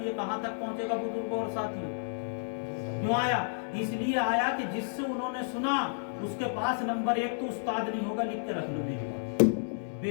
یہ کہاں تک پہنچے گا بزرگوں اور ساتھیوں؟ کیوں آیا؟ اس لیے آیا کہ جس سے انہوں نے سنا اس کے پاس نمبر ایک تو استاد نہیں ہوگا، لکھ کے رکھ لو میری،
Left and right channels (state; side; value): silent; right; digital silence